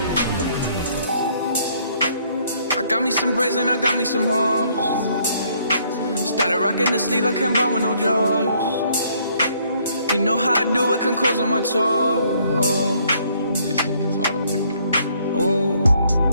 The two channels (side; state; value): both; inverted; correlation -0.66